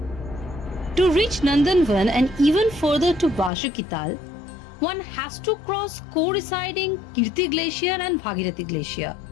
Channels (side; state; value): right; drops out; at 3.5 s